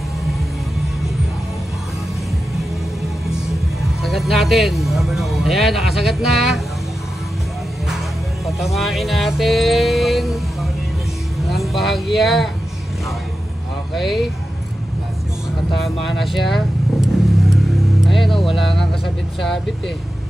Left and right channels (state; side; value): normal; both; correlation 0.91